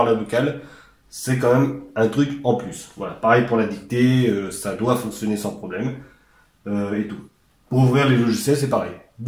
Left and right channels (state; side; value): identical; both; correlation 1.00